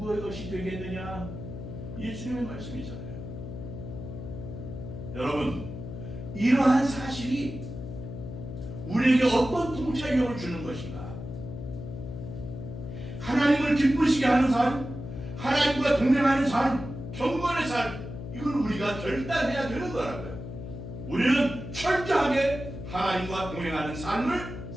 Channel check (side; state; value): left; noise; hum, 9 dB below the sound